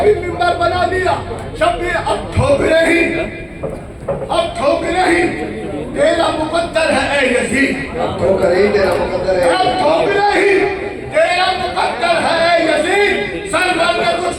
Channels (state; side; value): identical; both; correlation 1.00